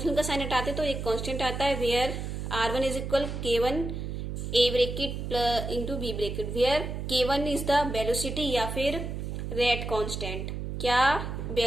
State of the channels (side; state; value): right; noise; hum, 5 dB below the sound